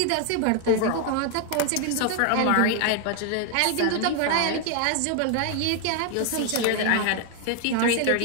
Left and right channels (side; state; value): both; different; correlation 0.00